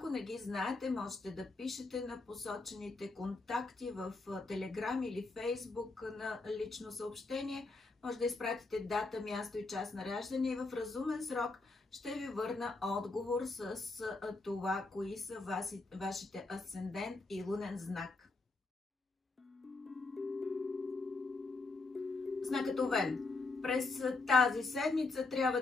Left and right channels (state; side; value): quieter; right; 3.4 dB